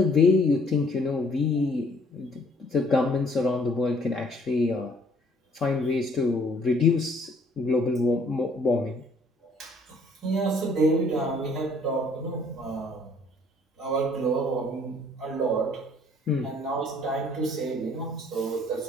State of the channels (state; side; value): normal; both; correlation 0.60